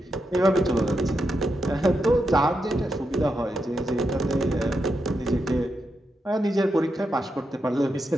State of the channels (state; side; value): normal; both; correlation 0.85